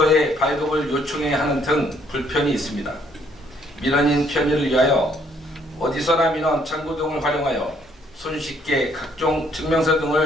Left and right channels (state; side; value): normal; both; correlation 0.66